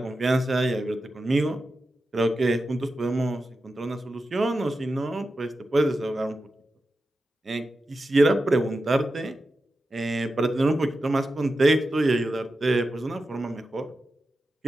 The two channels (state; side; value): normal; both; correlation 0.91